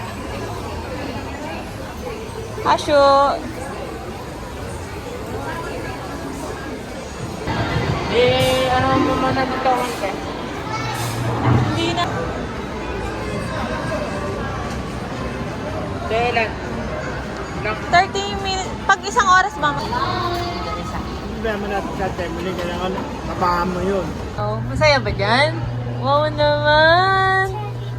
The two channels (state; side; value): identical; both; correlation 1.00